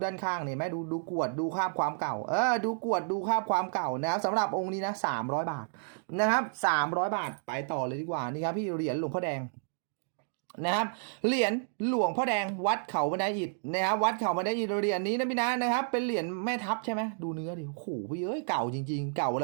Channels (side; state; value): left; silent; digital silence